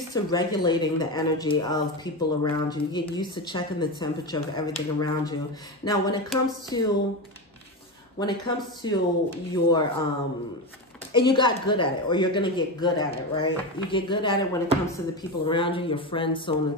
to regulating the energy of people around you. You get used to checking the temperature of everything around you. Now, when it comes to your, and you got good at it, or you're going to get good at it, right? You get good at it when it comes to the people around you, your friends, so on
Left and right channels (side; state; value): both; normal; correlation 0.17